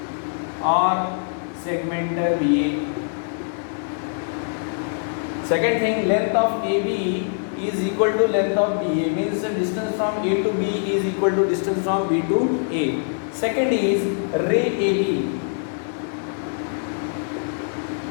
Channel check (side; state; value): right; silent; digital silence